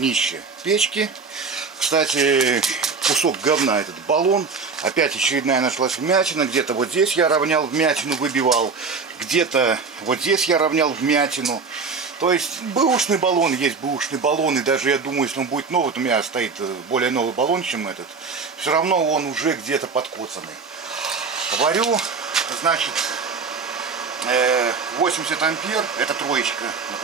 печки. Кстати, кусок говна этот баллон. Опять очередная нашлась вмятина. Где-то вот здесь я равнял вмятину, выбивал. Где-то вот здесь я равнял вмятину. То есть бэушный баллон есть бэушный баллон. И даже я думаю, если он будет новый, вот у меня стоит более новый баллон, чем этот. Все равно он уже где-то подкоцанный. Варю, значит, 80 ампер. Это троечка,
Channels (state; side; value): quieter; left; 4.9 dB